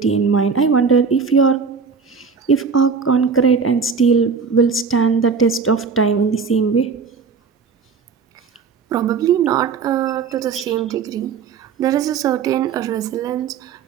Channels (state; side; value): quieter; left; 5.6 dB